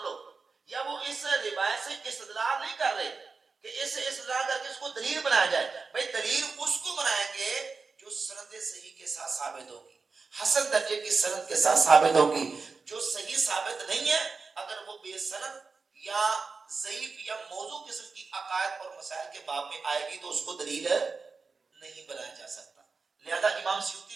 لو، یا وہ اس روایت سے استدلال نہیں کر رہے کہ اس سے استدلال کر کے اس کو دلیل بنایا جائے. بھائی دلیل اس کو بنائیں گے جو سند صحیح کے ساتھ ثابت ہوگی، حسن درجے کی سند کے ساتھ ثابت ہوگی. جو صحیح ثابت نہیں ہے، اگر وہ بے سند یا ضعیف یا موضوع قسم کی عقائد اور مسائل کے باب میں آئے گی تو اس کو دلیل نہیں بنایا جا سکتا. لہذا امام سیوطی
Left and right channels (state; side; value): quieter; left; 4.5 dB